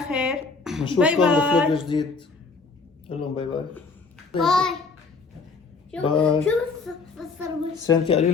خير. باي نشوفكم باي. بفلوج جديد. قول لهم باي باي. باي. باي. شوف بصر سنتي قولي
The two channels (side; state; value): right; quieter; 4.4 dB